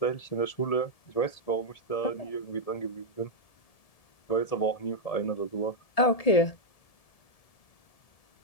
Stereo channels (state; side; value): late; right; 1.7 ms